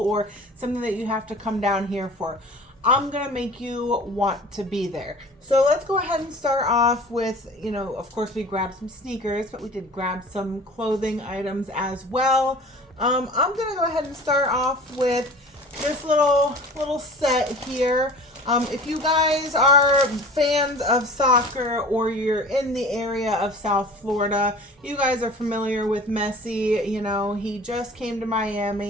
something that you have to come down here for. I'm going to make you want to be there. So let's go ahead and start off with, of course we grabbed some sneakers, but we did grab some clothing items as well. I'm going to go ahead and start off with this little set here. If you guys are fans of soccer or you're in the area of South Florida, you guys are familiar with Messi. He just came to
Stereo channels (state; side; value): normal; both; correlation 0.42